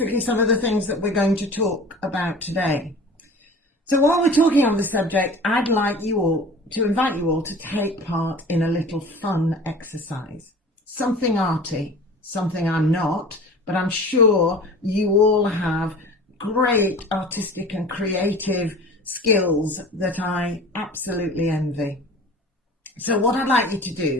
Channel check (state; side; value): normal; both; correlation 0.41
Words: some of the things that we're going to talk about today. So while we're talking on the subject, I'd like you all to invite you all to take part in a little fun exercise. Something arty, something I'm not, but I'm sure you all have great artistic and creative skills that I absolutely envy. So what I'd like you to